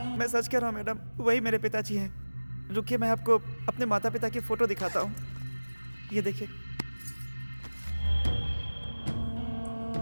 मैं सच कह रहा हूँ मैडम, वही मेरे पिताजी हैं। रुकिए, मैं आपको अपने माता पिता की फोटो दिखाता हूँ। ये देखिए।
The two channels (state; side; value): inverted; both; correlation -1.00